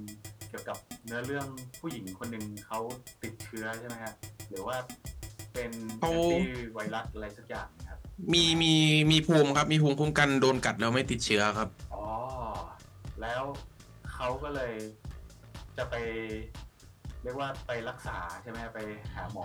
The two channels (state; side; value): identical; both; correlation 1.00